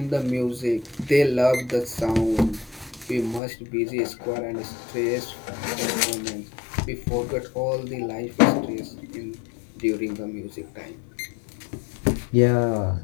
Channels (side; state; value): right; drops out; at 3.4 s